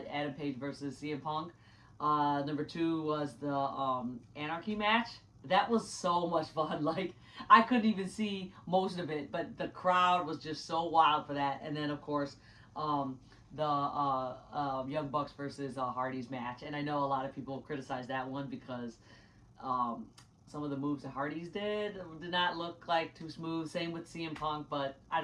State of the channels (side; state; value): both; identical; correlation 1.00